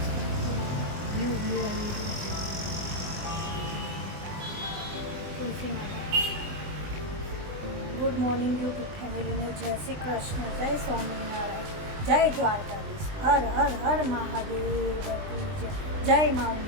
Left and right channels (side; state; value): left; late; 20 ms